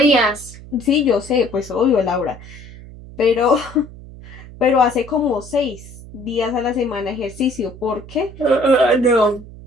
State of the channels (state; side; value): noise; right; hum, 16 dB below the sound